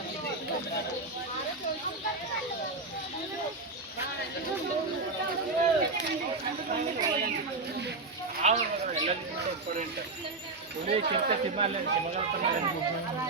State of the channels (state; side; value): quieter; left; 3.5 dB